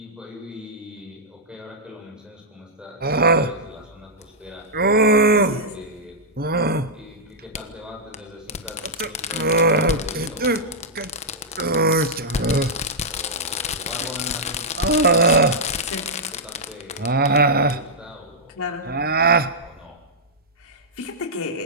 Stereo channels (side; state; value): both; normal; correlation -0.08